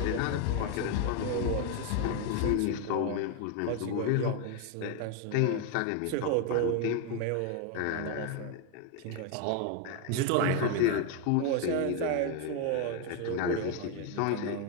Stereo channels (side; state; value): both; different; correlation 0.01